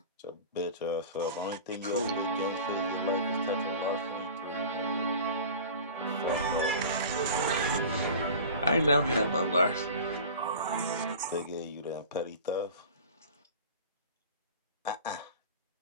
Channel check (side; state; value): both; inverted; correlation -0.37